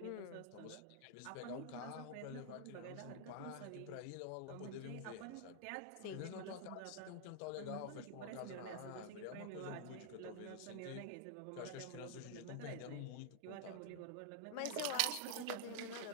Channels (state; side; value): different; both; correlation -0.01